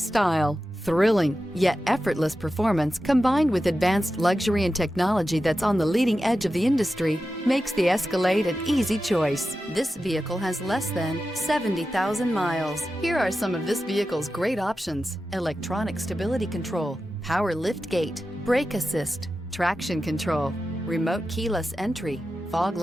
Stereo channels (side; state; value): both; normal; correlation 0.92